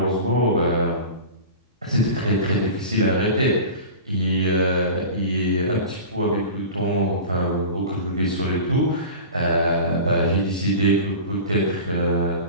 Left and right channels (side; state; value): both; inverted; correlation -0.34